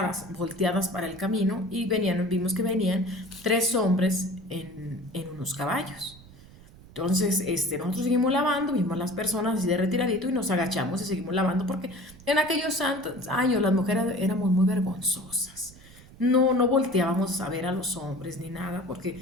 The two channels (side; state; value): right; noise; rumble, 21 dB below the sound